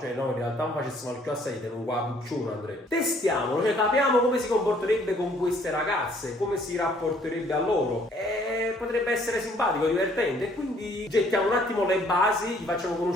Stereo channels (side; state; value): both; normal; correlation 0.62